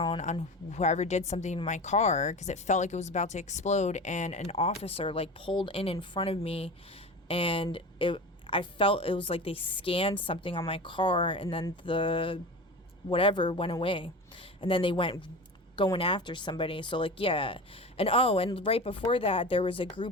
on whoever did something to my car, because it felt like it was about to explode, and an officer, like, pulled in front of me, and I felt it was like they scanned something on my car, and then the whatever went away. And then they went going after somebody. So like, yeah. And and right before that, there was a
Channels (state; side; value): normal; both; correlation 0.30